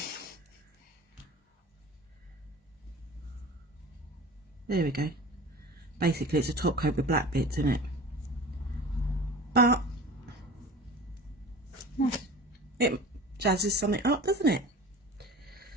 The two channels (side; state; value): both; normal; correlation 0.38